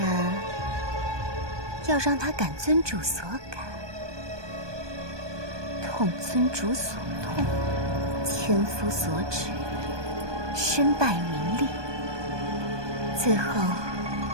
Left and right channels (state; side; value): late; left; 1.2 ms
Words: 要让他感尊主所感，痛尊主所痛，千夫所指，身败名裂，最后